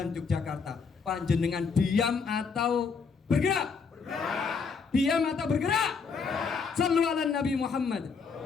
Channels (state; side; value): quieter; right; 5.3 dB